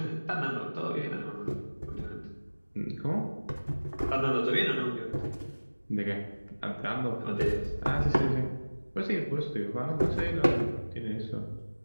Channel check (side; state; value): both; inverted; correlation -1.00